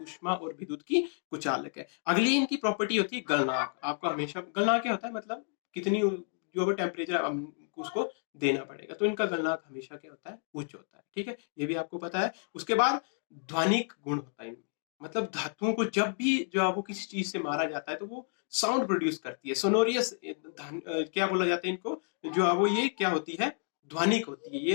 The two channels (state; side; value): silent; right; 57 dB below the other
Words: और विद्युत की कुचालक है। अगली इनकी प्रॉपर्टी होती है गलनांक। आपको हमेशा गलनांक क्या होता है, मतलब कितनी जो टेम्परेचर उसको देना पड़ेगा। तो इनका गलनांक हमेशा क्या होता है, उच्च होता है। ठीक है, ये भी आपको पता है। उसके बाद ध्वनिक गुण होता है इनमें। मतलब धातुओं को जब भी जो है वो किसी चीज से मारा जाता है तो वो साउंड प्रोड्यूस करती है, सोनोरियस। क्या बोला जाता है इनको, जो है वो ये क्या होती है, ध्वनिक होती है।